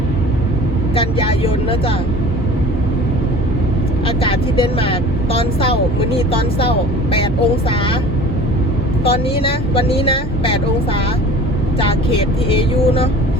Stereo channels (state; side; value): normal; both; correlation 0.43